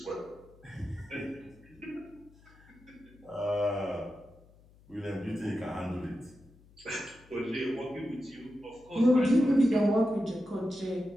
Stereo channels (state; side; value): noise; left; hum, 26 dB below the sound